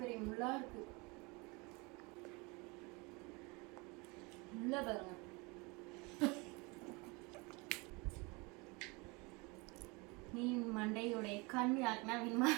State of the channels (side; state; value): left; quieter; 27.4 dB